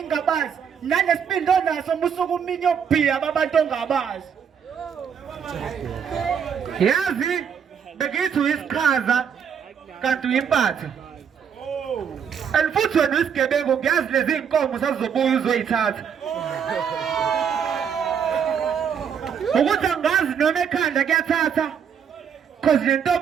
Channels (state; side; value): quieter; left; 7.5 dB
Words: nanesiphindo naso musuku uminye obhiya abantu ongabazi. Yazi begithi uyisiqhaza kanti uyimpatha. And futhi wena uyisigebengu ngiyazi lezi inkomo sazizobuya uzoyithatha. Ukuthi angazi noma ekhanda kuyathatha cause le